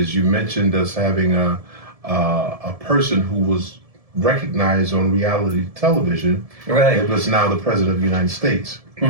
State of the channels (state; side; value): late; left; 1.7 ms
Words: You mentioned us having a person who was recognized on reality television. Right. It was now the president of the United States.